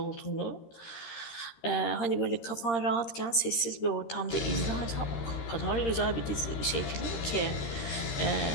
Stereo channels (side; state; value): right; late; 13 ms